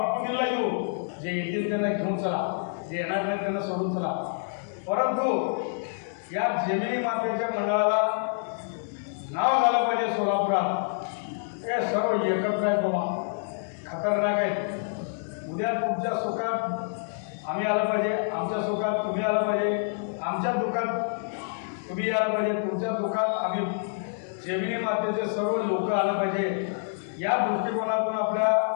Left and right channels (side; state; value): right; silent; digital silence